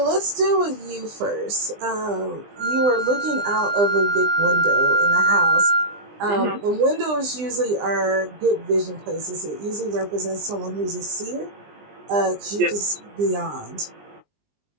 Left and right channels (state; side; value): late; left; 20 ms